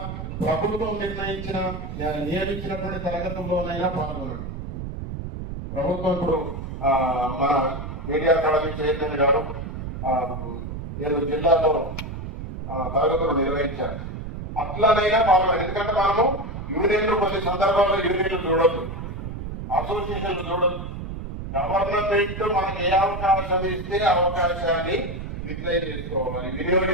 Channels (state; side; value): noise; right; rumble, 7 dB below the sound